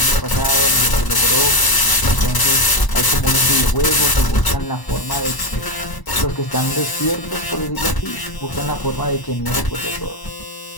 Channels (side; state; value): right; late; 1.0 ms